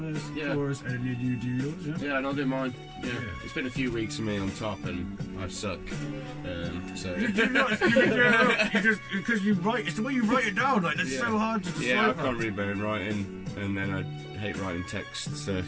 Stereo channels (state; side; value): identical; both; correlation 1.00